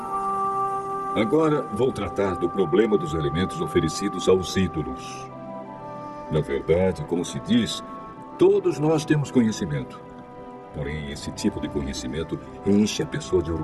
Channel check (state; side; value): identical; both; correlation 1.00